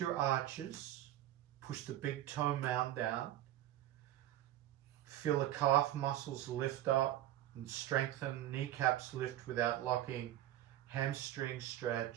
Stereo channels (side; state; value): left; quieter; 13.3 dB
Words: arches, push the big toe mound down. Feel the calf muscles lift up and strengthen, kneecaps lift without locking, hamstring